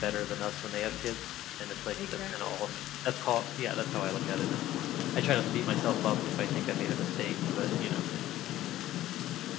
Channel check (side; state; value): right; quieter; 14.3 dB